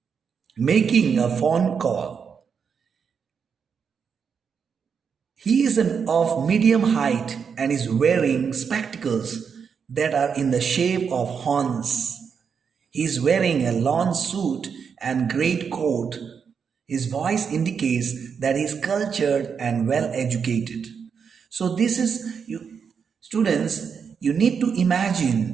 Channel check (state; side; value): quieter; left; 6.5 dB